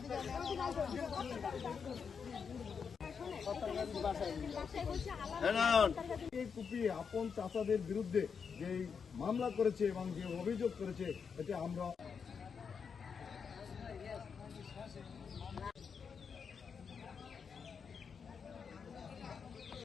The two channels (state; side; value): quieter; right; 6.2 dB